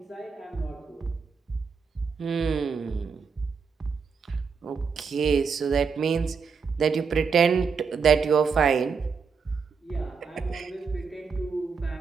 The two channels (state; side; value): quieter; left; 5.6 dB